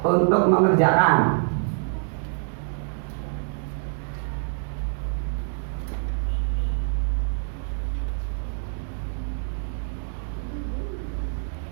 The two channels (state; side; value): silent; left; digital silence